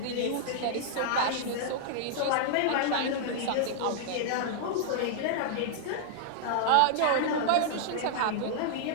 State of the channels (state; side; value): different; both; correlation -0.01